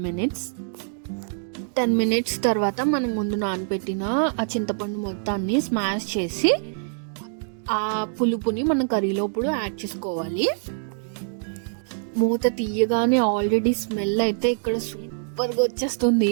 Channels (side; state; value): left; silent; digital silence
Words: మినిట్స్ తర్వాత మనం ముందు నానబెట్టిన ఆ చింతపండు మొత్తాన్ని స్మాష్ చేసి ఆ పులుపుని మనం కర్రీలోప్పుడు యాడ్ చేసుకోవాలి. మూత తీయగానే ఆల్రెడీ స్మెల్ అయితే ఇక్కడ సూపర్గా